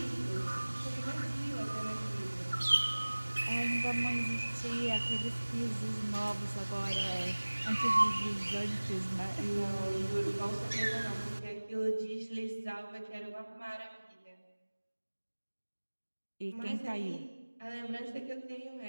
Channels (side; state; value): both; inverted; correlation -1.00